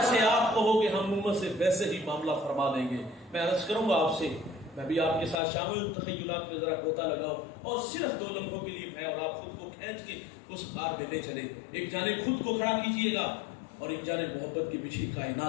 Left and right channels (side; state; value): right; drops out; at 5.4 s